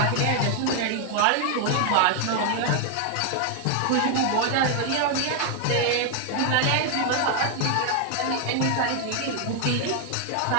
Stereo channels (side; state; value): both; different; correlation 0.00